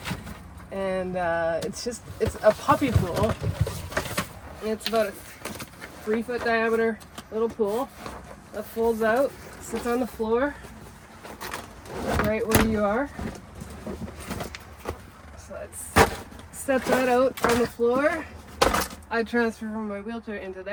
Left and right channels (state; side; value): identical; both; correlation 1.00